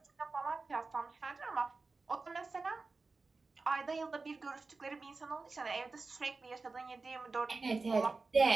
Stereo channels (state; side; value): quieter; left; 3.9 dB